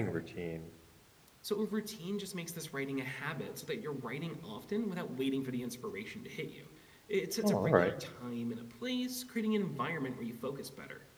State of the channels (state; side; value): identical; both; correlation 1.00